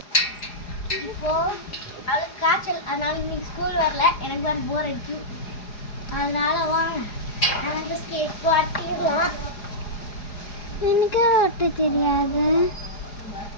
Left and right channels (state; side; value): late; right; 4.9 ms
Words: இப்போ அவளுக்கு காய்ச்சல், அதனால இன்னைக்கு ஸ்கூல் வரல. எனக்கு வேறு போர் அடிச்சு, அதனால வாங்க எனக்கு ஸ்கேட் ஓட்டிடலாம். எனக்கு ஓட்ட தெரியாது.